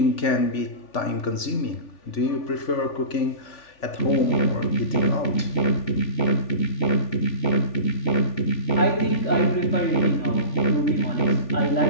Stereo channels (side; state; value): right; late; 3.4 ms